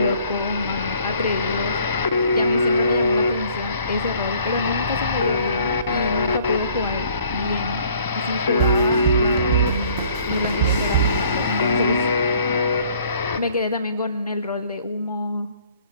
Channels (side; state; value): both; inverted; correlation -0.58